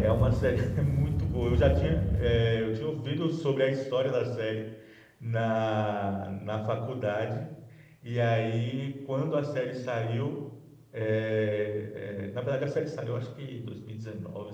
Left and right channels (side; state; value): both; identical; correlation 1.00